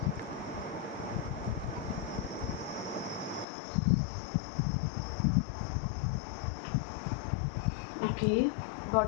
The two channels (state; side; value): drops out; right; at 3.5 s